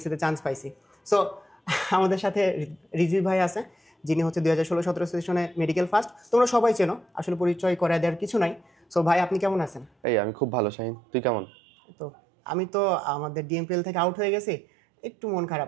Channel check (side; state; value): left; drops out; at 9.9 s